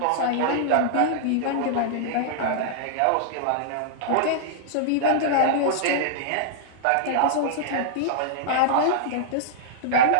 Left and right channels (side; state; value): both; different; correlation -0.02